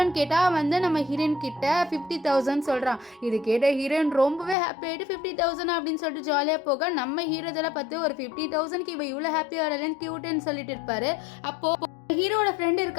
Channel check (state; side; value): drops out; right; at 4.5 s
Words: கேட்டால் வந்து நம்ம ஹீரோயின் கிட்ட 50,000 சொல்கிறான். இது கேட்ட ஹீரோயின் ரொம்பவே ஹாப்பி ஆகிட்டு 50,000 அப்படின்னு சொல்லிட்டு ஜாலியாக போக, நம்ம ஹீரோ இதெல்லாம் பார்த்து ஒரு 50,000க்கு இவ இவ்வளோ ஹாப்பியாக வரலன்னு க்யூட்டுன்னு சொல்லிட்டு இருப்பாரு. அப்போது ஹீரோட ஃப்ரெண்ட்